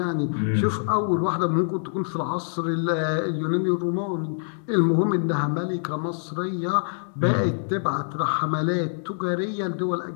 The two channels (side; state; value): right; silent; digital silence